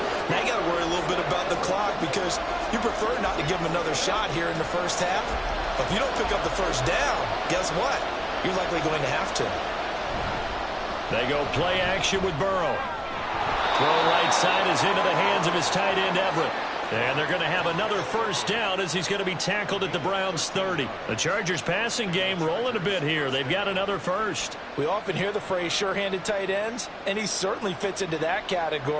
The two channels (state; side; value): identical; both; correlation 1.00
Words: Now you got to worry a little bit about the clock because you prefer not to give them another shot here in the first half. But if you don't pick up the first down, guess what? You're likely going to have to. They go play action with Burrow. Throw right side is into the hands of his tight end, Everett. And they're going to have another first down as he's going to be tackled at the Browns' 30. The Chargers passing game rolling a bit here. They've got another first. We often hear the phrase sure-handed tight ends, and he certainly fits into that